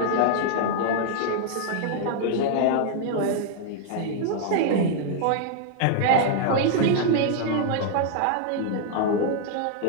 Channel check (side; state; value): both; different; correlation 0.00